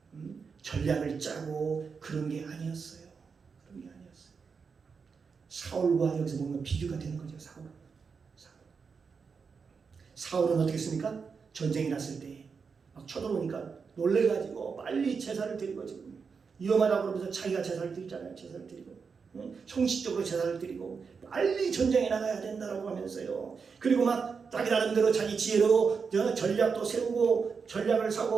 전략을 짜고 그런 게 아니었어요. 사울과 여기서 보면 비교가 되는 거죠. 사울은 어떻게 했습니까? 전쟁이 났을 때 막 쳐들어오니까 놀래가지고 빨리 제사를 드리고 지금 위험하다고 그러면서 자기가 제사를 드리잖아요. 제사를 드리고 형식적으로 제사를 드리고 빨리 전쟁에 나가야 된다고 하면서요. 그리고 막 자기 나름대로 자기 지혜로 전략도 세우고 전략을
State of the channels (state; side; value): quieter; left; 5.5 dB